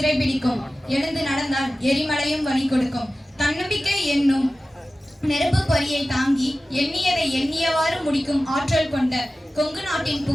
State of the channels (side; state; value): both; normal; correlation 0.95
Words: எழுந்து நடந்தால் எரிமலையும் வழி கொடுக்கும். தன்னம்பிக்கை என்னும் நெருப்பு பொறியை தாங்கி எண்ணியதை எண்ணியவாறு முடிக்கும் ஆற்றல் கொண்ட கொங்கு நாட்டின்